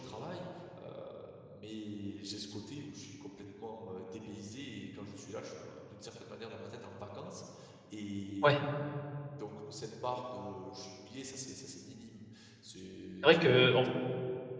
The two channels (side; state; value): both; identical; correlation 1.00